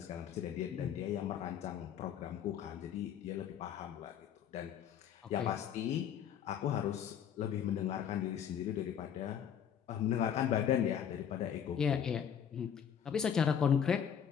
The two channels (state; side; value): quieter; right; 8.7 dB